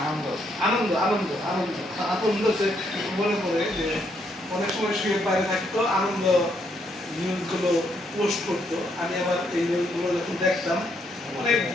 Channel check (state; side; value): normal; both; correlation 0.74